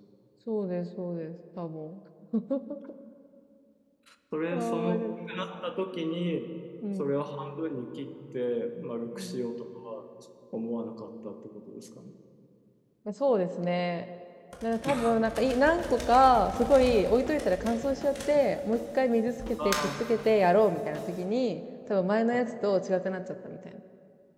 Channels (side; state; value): both; identical; correlation 1.00